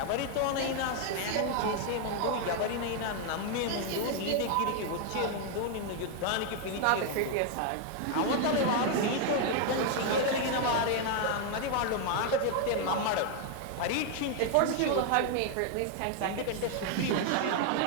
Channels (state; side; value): different; both; correlation 0.00